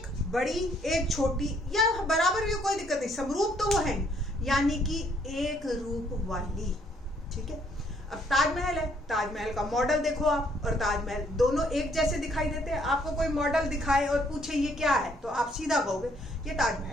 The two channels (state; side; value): normal; both; correlation 0.67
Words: बड़ी एक छोटी, या बराबर भी कोई दिक्कत नहीं, समरूप तो वो है, यानी कि एक रूप वाली। ठीक है, अब ताजमहल है, ताजमहल का मॉडल देखो आप और ताजमहल दोनों एक जैसे दिखाई देते हैं। आपको कोई मॉडल दिखाए और पूछे ये क्या है तो आप सीधा कहोगे ये ताजमहल